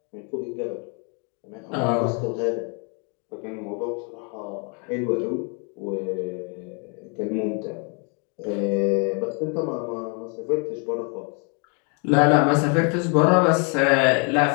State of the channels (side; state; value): right; quieter; 36.6 dB